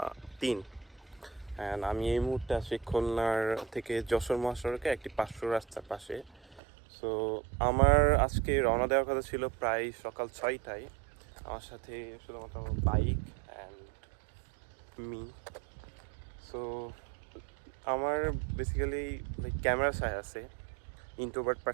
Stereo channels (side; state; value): left; drops out; at 6.6 s